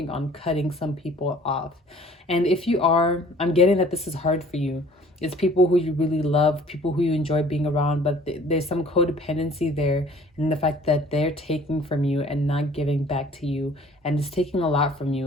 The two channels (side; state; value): both; normal; correlation 0.52